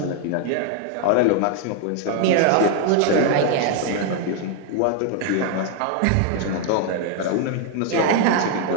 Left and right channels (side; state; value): both; different; correlation 0.00